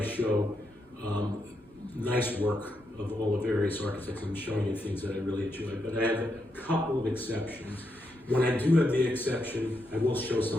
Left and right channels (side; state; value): both; normal; correlation 0.82